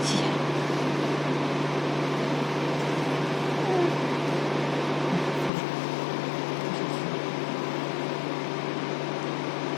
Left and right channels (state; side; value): drops out; right; at 5.5 s